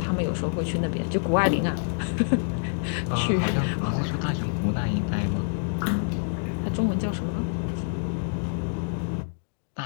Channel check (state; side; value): silent; right; digital silence